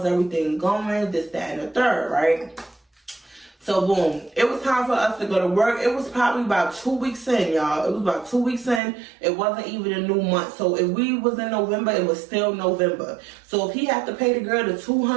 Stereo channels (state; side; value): drops out; left; at 8.8 s